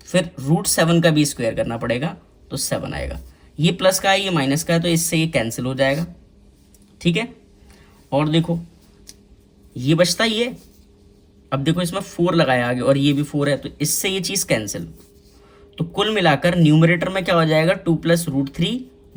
फिर √7 का भी स्क्वायर करना पड़ेगा तो 7 आएगा, ये प्लस का है ये माइनस का है तो इससे ये कैंसिल हो जाएगा, ठीक है। और देखो ये बचता ही है, अब देखो इसमें 4 लगाया आगे और ये भी 4 है तो इससे ये चीज़ कैंसिल, तो कुल मिलाकर न्यूमरेटर में क्या हो जाएगा 2 + √3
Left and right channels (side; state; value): both; identical; correlation 1.00